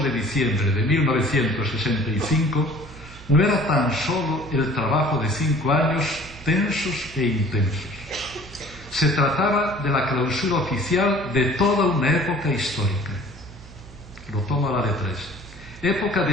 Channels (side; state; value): right; noise; hum, 18 dB below the sound